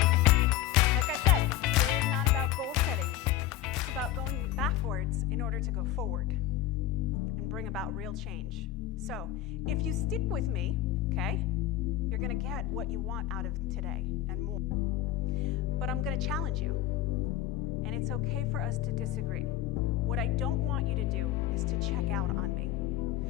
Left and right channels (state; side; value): quieter; right; 12.5 dB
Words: Like I said, today is not about goal setting. It's about going backwards in order to go forward and bring about real change. So, if you stick with me, okay, you're going to get what you want out of today and more. But I'm going to challenge you. And it's okay for us to disagree. What I don't want you to do is to check out on me.